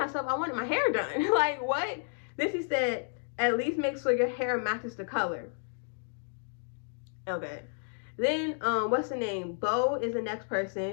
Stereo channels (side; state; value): right; silent; 57 dB below the other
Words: I wanted my hair done. Like, what? Then she said, at least make sure your hair matches the color. Okay. Then, what's the name? Bo is the next